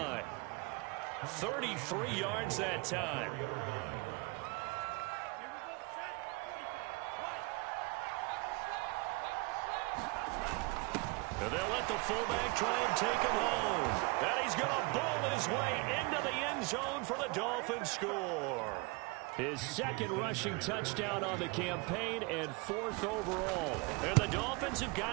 33 yards that time. And they'll let the fullback try and take him home. And he's going to bowl his way into the end zone for the Dolphins score. His 2nd rushing touchdown on the campaign and 4th overall. And the Dolphins have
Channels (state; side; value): quieter; left; 27.0 dB